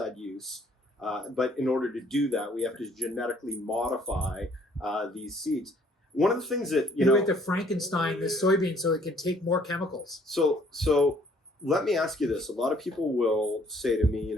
use, but in order to do that, we have to genetically modify these seeds. One of the things that you have to Frankenstein this soybean so it can take more chemicals. So let me ask you this: a lot of people will say to me,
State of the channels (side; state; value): both; normal; correlation 0.61